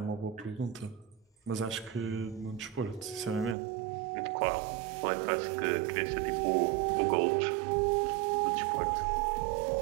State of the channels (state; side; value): drops out; left; at 3.6 s